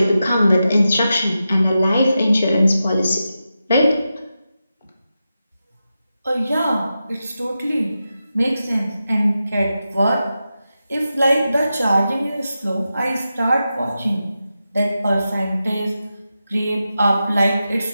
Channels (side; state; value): both; inverted; correlation -0.90